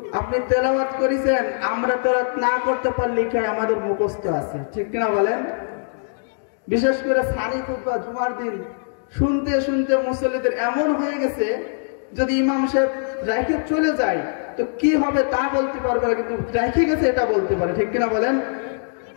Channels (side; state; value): right; silent; digital silence